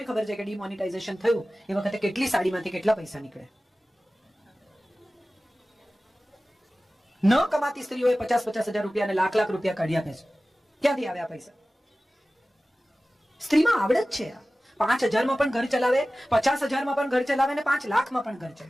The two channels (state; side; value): normal; both; correlation 0.96